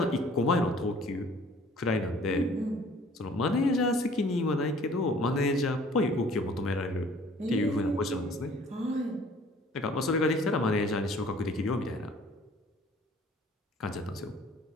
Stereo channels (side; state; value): both; normal; correlation 0.54